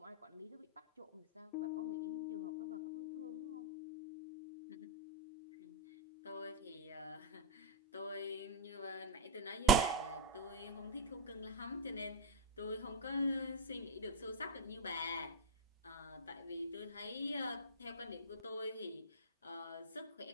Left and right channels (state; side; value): normal; both; correlation -0.04